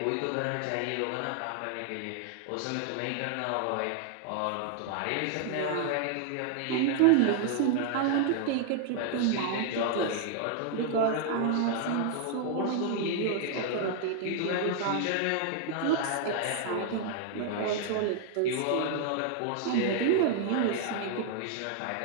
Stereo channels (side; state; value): both; different; correlation 0.00